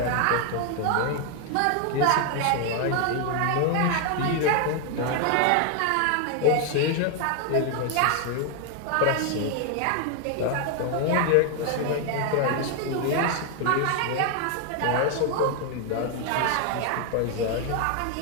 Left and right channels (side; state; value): both; different; correlation 0.00